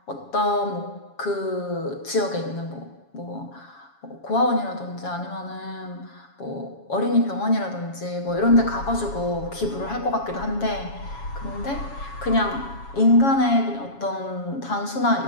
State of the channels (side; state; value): right; late; 7.2 ms